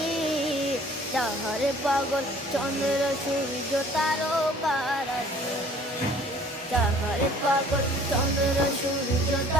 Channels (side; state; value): both; normal; correlation 0.53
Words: যাহারে পাগল চন্দ্র সূর্য তারকারাজি, যাহারে পাগল চন্দ্র সূর্য